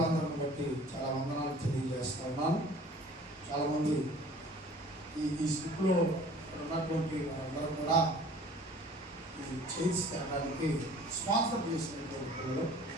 బట్టి చాలా వందనాలు తెలియజేస్తా ఉన్నాను. చాలామంది ఈ స్లిప్లో ఉన్నటువంటి వారందరూ కూడా ఈ చైర్స్ తేడానికి స్పాన్సర్ చేసినటువంటి పిల్లలు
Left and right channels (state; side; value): normal; both; correlation 0.48